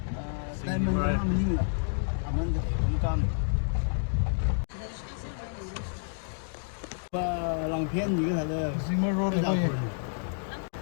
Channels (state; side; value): silent; right; digital silence